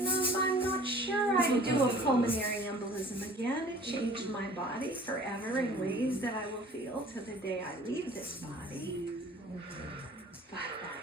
them? I'm not sure. I'd do a pulmonary embolism again. It changed my body forever in ways that I will feel to the day I leave this body. But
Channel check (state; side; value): normal; both; correlation 0.48